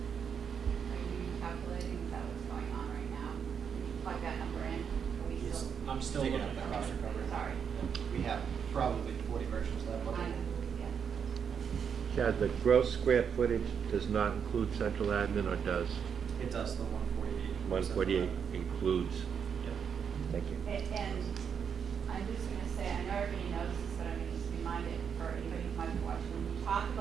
Are you calculating, is that what's going on right now? Can you plug that number in? Are we still? I'm still Taking looking up at the cost it. recovery. Sorry. We have probably 40 versions of that book. I know, yeah. Chad, the gross square footage does not include central admin, or does? It does, the 148. 148 includes. Yeah. Thank you. And I'm just gonna say, I know everybody knows this, but I'm gonna just remind it for anybody who might be watching. When you talk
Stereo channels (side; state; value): left; quieter; 7.2 dB